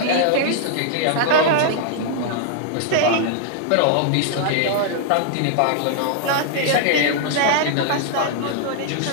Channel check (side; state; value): both; different; correlation -0.01